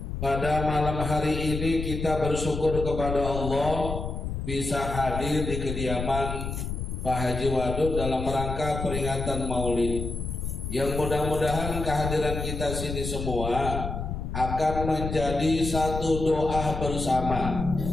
Pada malam hari ini kita bersyukur kepada Allah bisa hadir di kediaman Pak Haji Wadud dalam rangka peringatan Maulid, yang mudah-mudahan kehadiran kita sini semua akan menjadi satu doa bersama.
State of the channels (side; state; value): left; noise; rumble, 5 dB below the sound